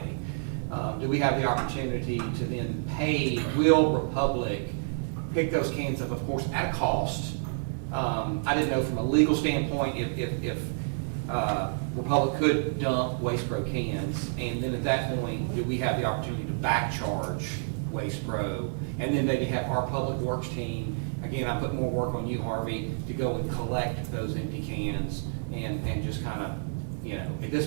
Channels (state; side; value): silent; left; digital silence